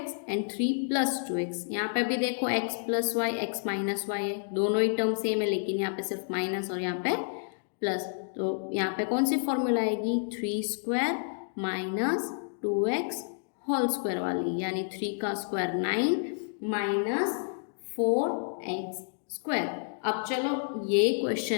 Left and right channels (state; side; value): silent; right; digital silence